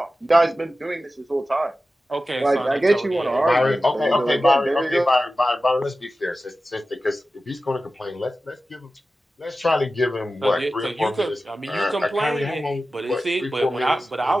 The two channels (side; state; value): both; normal; correlation 0.94